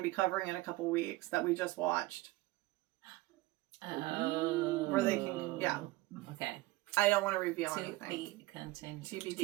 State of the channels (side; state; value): left; quieter; 19.8 dB